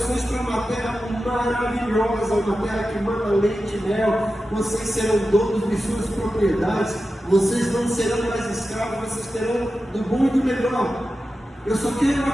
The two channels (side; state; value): both; normal; correlation 0.92